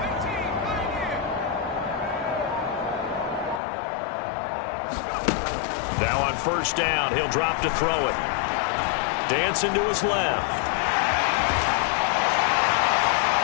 Now on first down, he'll drop to throw it. Dancing to his left.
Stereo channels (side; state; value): right; drops out; at 3.6 s